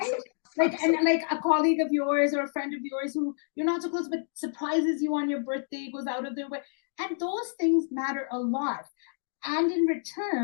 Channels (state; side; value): silent; right; digital silence